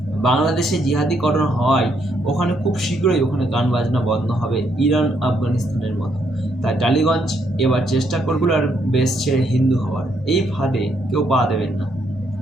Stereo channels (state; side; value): normal; both; correlation 0.74